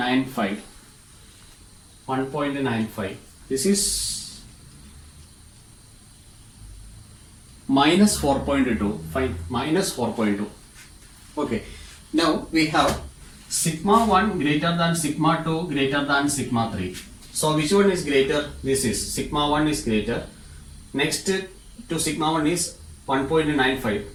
1.95. This is minus 4.2. Fine. Minus 4.2. Okay. Now we have sigma 1 greater than sigma 2 greater than sigma 3. So which one is greater? This is sigma 1 is greater. Next to sigma 1 is 1.95,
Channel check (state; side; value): identical; both; correlation 1.00